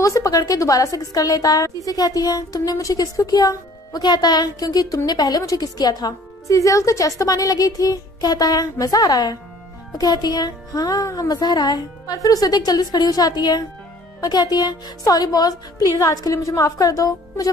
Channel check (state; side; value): normal; both; correlation 0.54